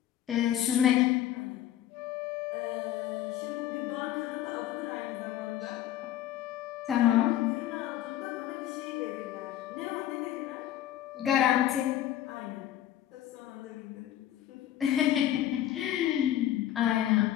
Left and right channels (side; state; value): right; quieter; 12.3 dB